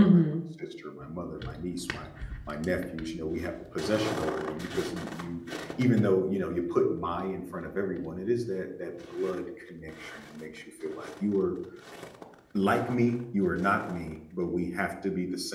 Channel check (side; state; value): both; identical; correlation 1.00